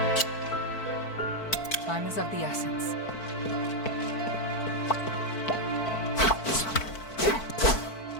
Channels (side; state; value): right; late; 4.5 ms